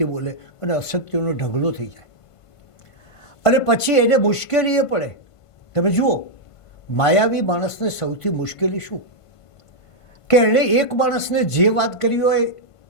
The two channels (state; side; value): late; right; 1.5 ms